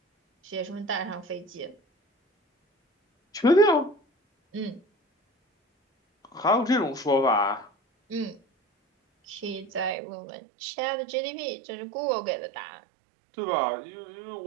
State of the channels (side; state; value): left; drops out; at 10.0 s